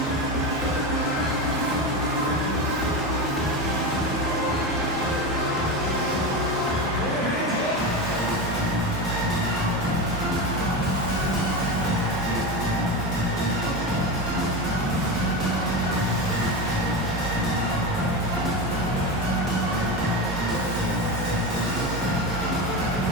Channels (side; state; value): both; normal; correlation 0.20